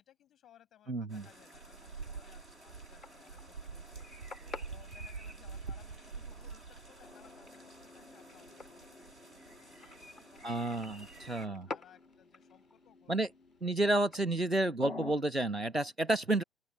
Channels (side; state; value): both; normal; correlation 0.68